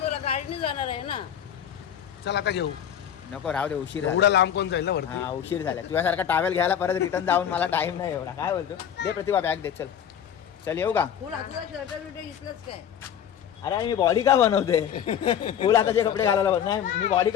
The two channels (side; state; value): right; quieter; 9.2 dB